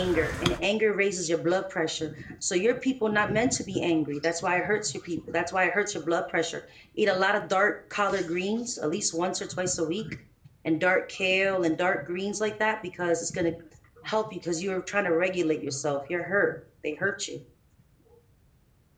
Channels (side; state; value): both; identical; correlation 1.00